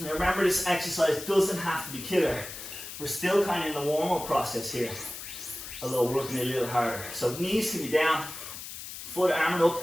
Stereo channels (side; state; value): left; noise; hiss, 10 dB below the sound